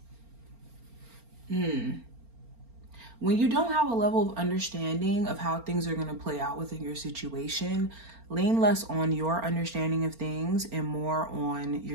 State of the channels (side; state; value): left; late; 4.4 ms